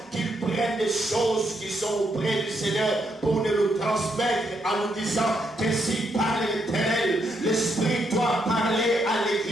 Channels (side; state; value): both; normal; correlation 0.78